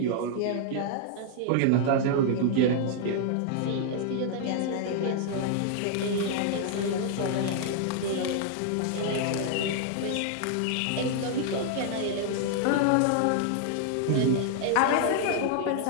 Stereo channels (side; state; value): both; different; correlation 0.00